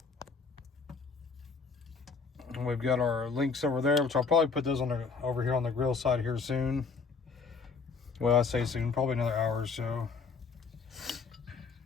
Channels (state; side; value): quieter; right; 4.9 dB